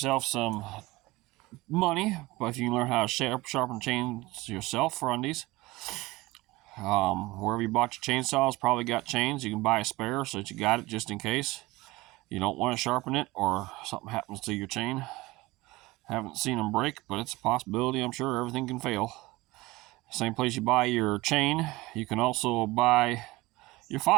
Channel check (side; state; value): left; quieter; 20.6 dB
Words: some money, but if you can learn how to sharpen chains yourself for undies. Wherever you bought your chainsaws, probably got chains. You can buy a spare so that you got it just in case you don't want to sharpen it or something happens to your chain. Haven't seen them break, but it's a possibility. I'm sure everything can fail. Same place you buy your chain, you can also buy your